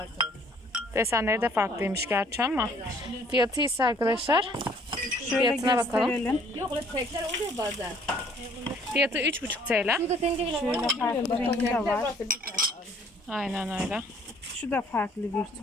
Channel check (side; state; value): both; normal; correlation 0.59